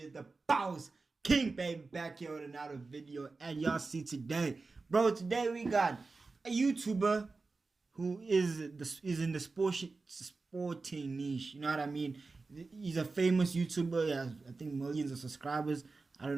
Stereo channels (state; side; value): quieter; left; 3.9 dB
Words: the boss king, baby, back here with another video. And y'all see today, bro. Today we got a YouTuber who is in the sporting niche. You know what I mean? He's a famous YouTuber. He has, I think, millions of subscribers. I